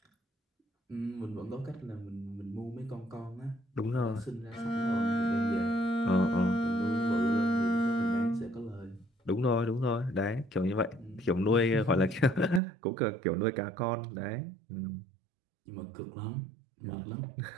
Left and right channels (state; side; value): drops out; left; at 12.6 s